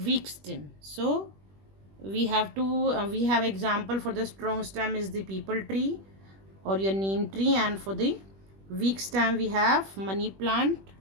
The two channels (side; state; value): left; late; 21 ms